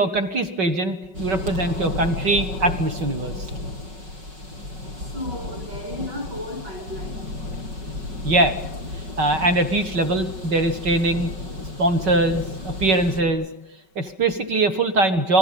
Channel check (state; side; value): late; left; 5.3 ms